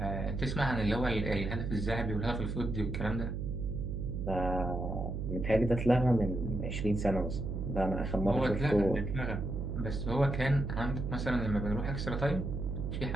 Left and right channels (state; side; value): noise; right; hum, 3 dB below the sound